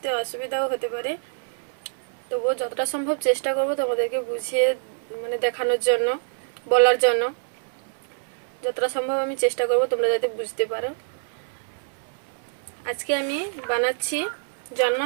असुविधाओ होते पारे, तबुओ যতটা সম্ভব চেষ্টা করব তোমাদেরকে বুঝিয়ে মানে দেখানোর জন্য, বলার জন্য যতটা সম্ভব আমি চেষ্টা করব তোমরা যাতে বুঝতে পারো। आज के आमी बानाচ্ছি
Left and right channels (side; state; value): left; silent; digital silence